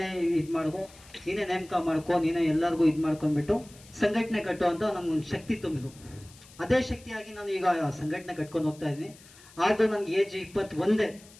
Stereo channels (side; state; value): left; noise; hiss, 23 dB below the sound